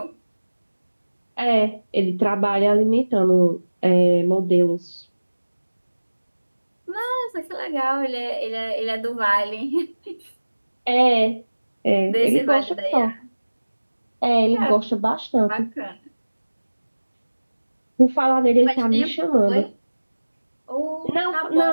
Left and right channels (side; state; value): both; inverted; correlation -1.00